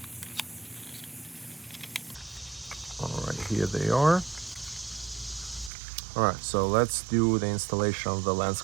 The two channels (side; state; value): left; drops out; at 5.7 s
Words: All right, here they are. All right, so let's do the installation of the lens